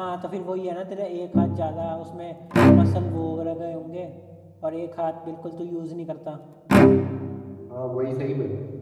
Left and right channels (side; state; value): both; identical; correlation 1.00